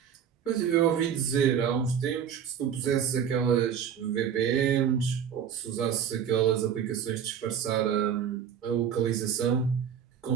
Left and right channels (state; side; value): quieter; left; 8.3 dB